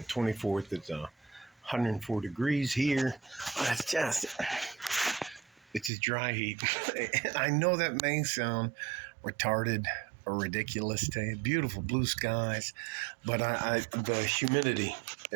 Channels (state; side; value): drops out; left; at 5.9 s